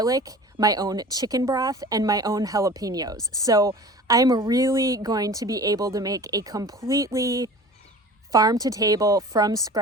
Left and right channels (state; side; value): normal; both; correlation 0.40